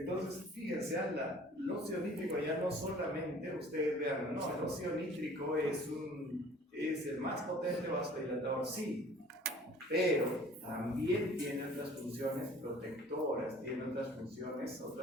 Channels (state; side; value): normal; both; correlation 0.50